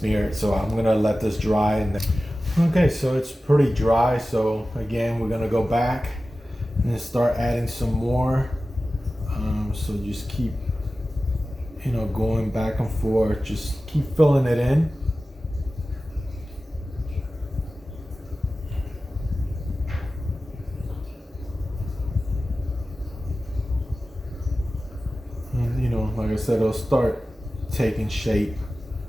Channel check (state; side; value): normal; both; correlation 0.95